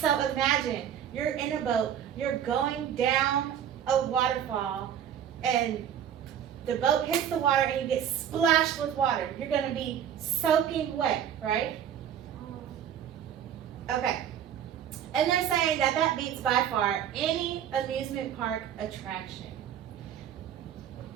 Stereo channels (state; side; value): quieter; left; 9.5 dB